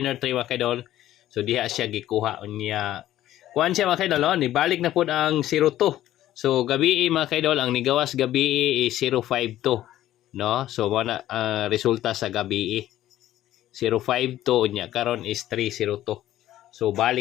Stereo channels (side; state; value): right; quieter; 13.5 dB